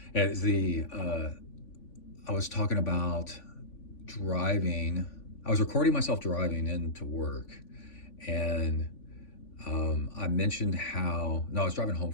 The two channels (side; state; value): right; late; 3.5 ms